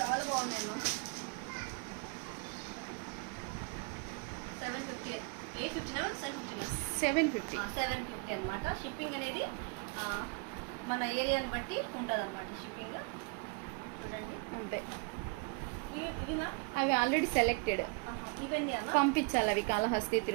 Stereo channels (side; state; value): left; quieter; 31.7 dB